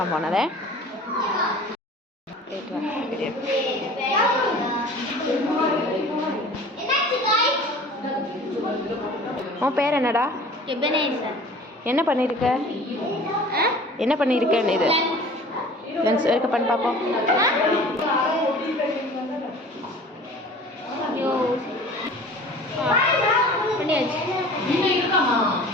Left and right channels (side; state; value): both; normal; correlation 0.44